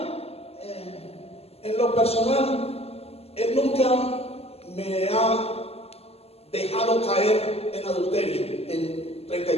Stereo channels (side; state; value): right; late; 0.29 ms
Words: en lo personal, Él nunca me ha dejado caer en adulterio en